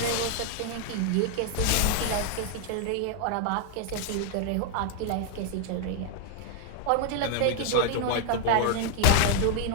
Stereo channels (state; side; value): different; both; correlation 0.00